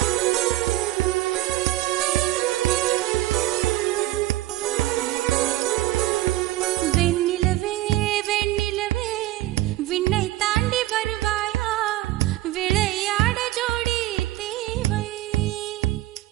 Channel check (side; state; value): left; quieter; 16.5 dB